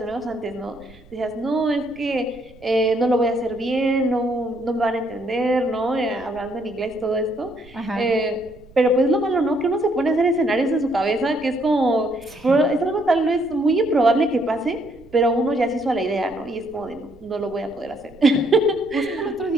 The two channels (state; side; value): noise; right; rumble, 24 dB below the sound